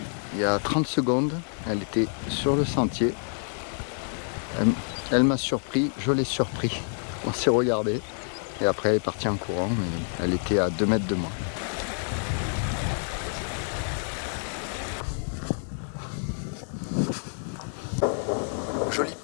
Il y a 30 secondes, elle était sur le sentier. Elle m'a surpris, je l'ai surpris. On s'est regardé et après elle est partie en courant. Elle était à 2 mètres de moi. Jolie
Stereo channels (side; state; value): right; silent; 60 dB below the other